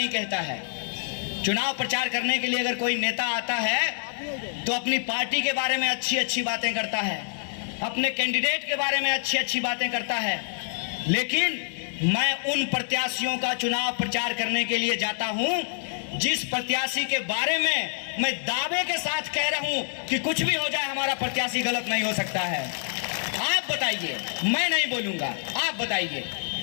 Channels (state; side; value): silent; right; digital silence